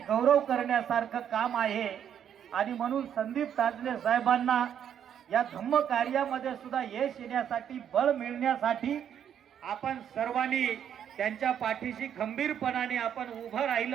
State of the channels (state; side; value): quieter; left; 9.1 dB